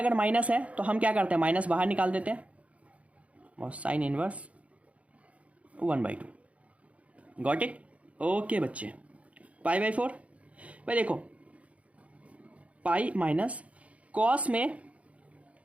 माइनस है तो हम क्या करते हैं, माइनस बाहर निकाल देते हैं और sine inverse 1/2। Got it. Okay बच्चे, π/4 भाई देखो, पाई माइनस कॉस में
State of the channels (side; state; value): left; late; 0.065 ms